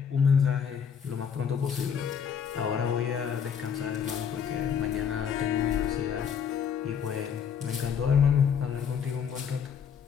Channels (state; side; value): quieter; right; 7.4 dB